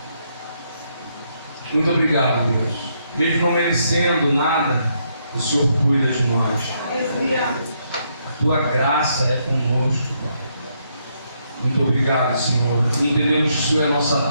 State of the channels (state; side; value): inverted; both; correlation -0.76